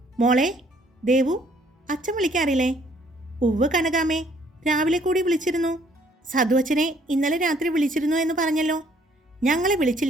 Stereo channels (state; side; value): normal; both; correlation 0.63